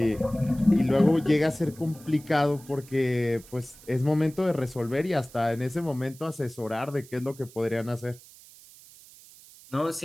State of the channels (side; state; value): right; noise; hiss, 22 dB below the sound